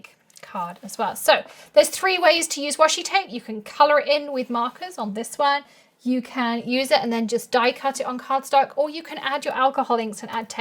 card as well. So there's 3 ways to use washi tape. You can color it in with markers on this one. you can use it and then just die cut it on cardstock, or you can add your alcohol inks and add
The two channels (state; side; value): identical; both; correlation 1.00